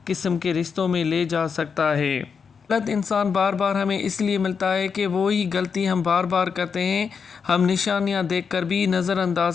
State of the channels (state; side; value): quieter; right; 6.1 dB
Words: قسم کے رشتوں میں لے جا سکتا ہے۔ غلط انسان بار بار ہمیں اس لیے ملتا ہے کہ وہی غلطی ہم بار بار کرتے ہیں، ہم نشانیاں دیکھ کر بھی نظر